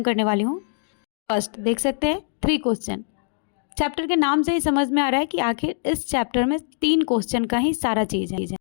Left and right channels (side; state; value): right; silent; digital silence